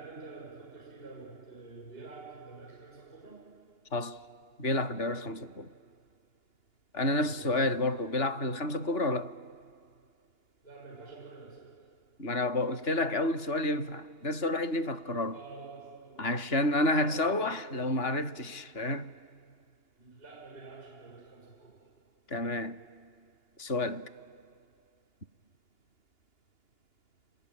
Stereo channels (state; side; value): late; right; 2.9 ms